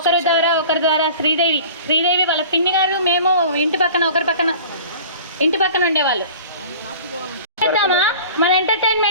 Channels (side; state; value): both; inverted; correlation -0.43